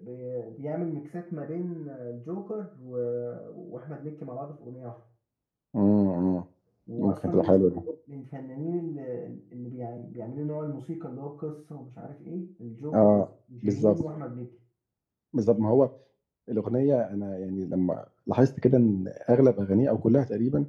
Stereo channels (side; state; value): both; identical; correlation 1.00